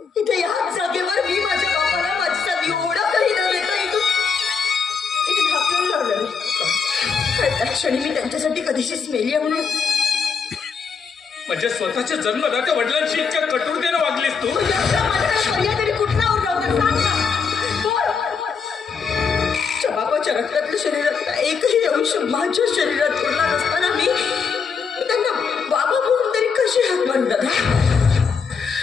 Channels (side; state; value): right; quieter; 5.7 dB